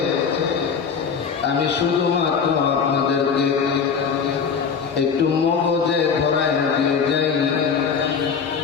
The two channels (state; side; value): quieter; right; 6.2 dB